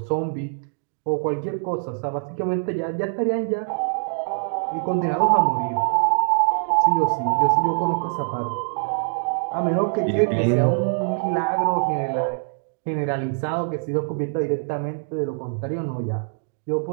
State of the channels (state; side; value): silent; left; digital silence